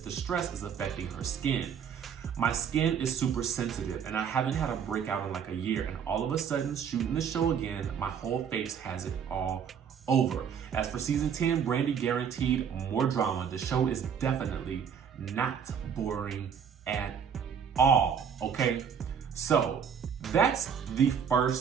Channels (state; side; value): quieter; left; 7.4 dB